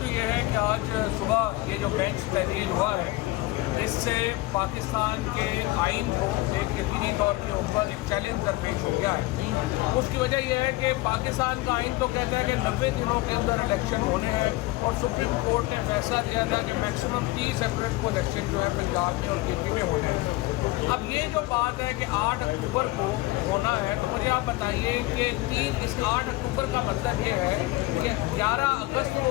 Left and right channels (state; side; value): quieter; right; 19.8 dB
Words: تو یہ ہے کہ آج صبح یہ جو بینچ تحلیل ہوا ہے اس سے پاکستان کے آئین کو ایک یقینی طور کے اوپر ایک چیلنج درپیش ہو گیا ہے. اس کی وجہ یہ ہے کہ پاکستان کا آئین تو کہتا ہے کہ 90 دنوں کے اندر الیکشن ہونے ہیں اور سپریم کورٹ نے فیصلہ دیا تھا کہ میکسیمم 30 اپریل کو الیکشن جو ہے پنجاب میں اور KP میں ہونے ہیں. اب یہ جو بات ہے کہ 8 اکتوبر کو ہونا ہے تو مجھے آپ بتائیے کہ اس 8 اکتوبر کا مطلب یہ ہے کہ 11 اگست